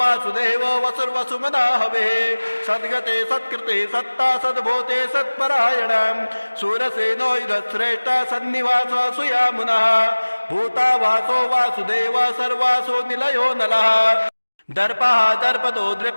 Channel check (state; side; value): inverted; both; correlation -1.00